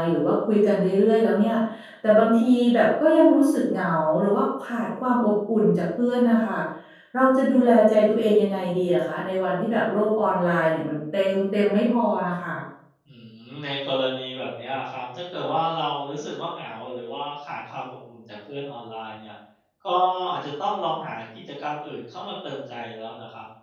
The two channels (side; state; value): both; identical; correlation 1.00